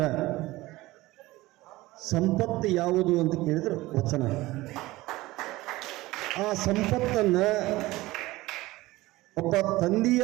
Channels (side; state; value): left; quieter; 18.9 dB